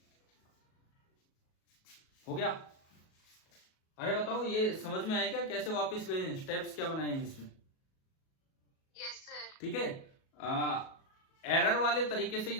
हो गया? अरे बताओ, ये समझ में आया क्या कैसे वापस गए हैं, स्टेप्स क्या बनाए हैं इसमें? Yes sir. ठीक है। एरर वाले तरीके से ही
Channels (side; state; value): right; late; 37 ms